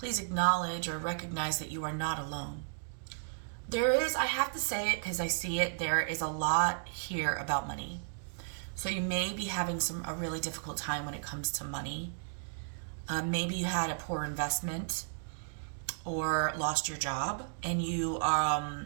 please acknowledge or recognize that you are not alone. There is, I have to say it because I see it, there is a lot here about money. So you may be having a really difficult time when it comes to money. Maybe you had a poor investment or lost your job, and you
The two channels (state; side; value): silent; left; digital silence